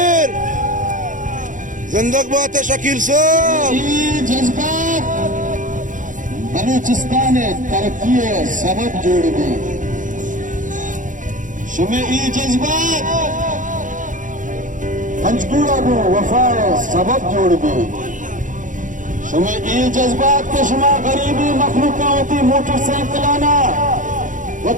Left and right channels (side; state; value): left; late; 0.37 ms